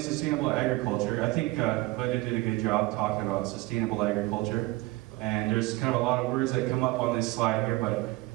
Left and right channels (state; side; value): quieter; left; 20.5 dB